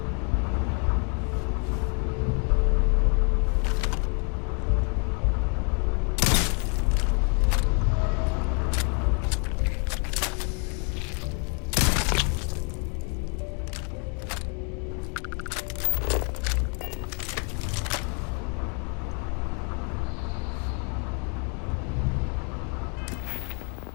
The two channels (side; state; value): right; quieter; 38.5 dB